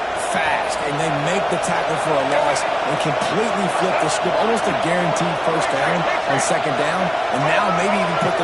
fast, and they make the tackle for a loss and completely flip the script. Almost a guaranteed 1st down on 2nd down, and now maybe even put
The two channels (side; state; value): both; identical; correlation 1.00